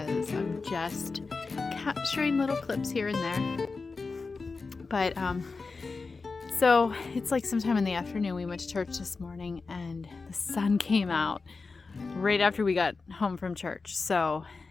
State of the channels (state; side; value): quieter; right; 4.2 dB